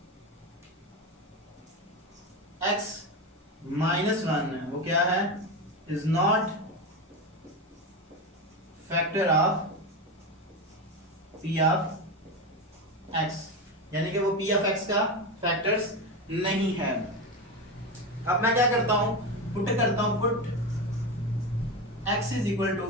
x -1 है वो क्या है, is not factor of p of x, यानी कि वो p ऑफ x का फैक्टर्स नहीं है। अब मैं क्या करता हूं, पुट करता हूं, put x is equal to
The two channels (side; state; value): both; normal; correlation 0.18